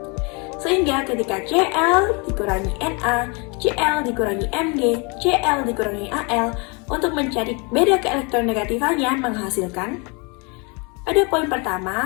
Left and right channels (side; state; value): right; quieter; 31.4 dB